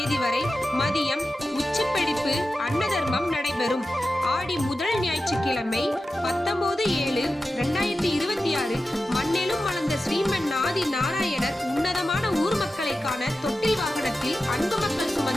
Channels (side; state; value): both; normal; correlation 0.93